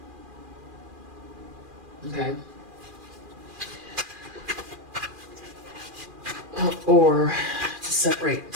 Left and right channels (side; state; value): left; late; 2.4 ms